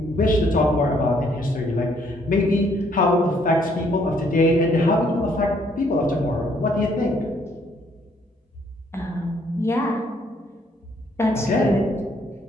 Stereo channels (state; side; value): normal; both; correlation 0.66